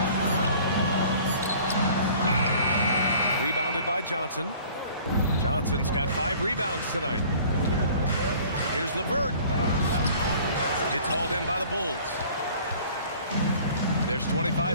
Rebounded by Johnson. Johnson's got 5 rebounds tonight. Here's LeVert. It's hauled in by the Bulls. There's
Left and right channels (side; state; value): both; inverted; correlation -0.50